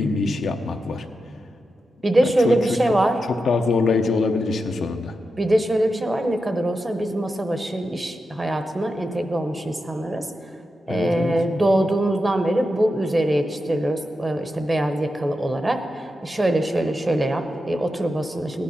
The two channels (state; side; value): normal; both; correlation 0.89